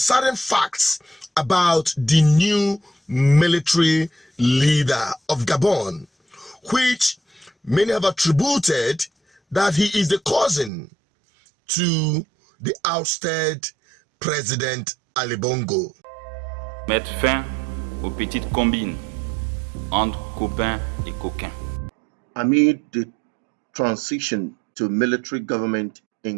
facts about the new military leader of Gabon, which many have attributed that he is the cousin to the ousted President Ali Bongo. Mettre fin aux petites combines entre copains et coquins. Amid the transition to military government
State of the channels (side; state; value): left; drops out; at 10.7 s